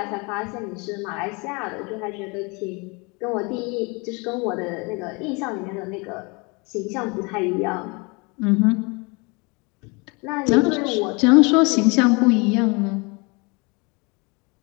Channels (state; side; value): quieter; right; 29.0 dB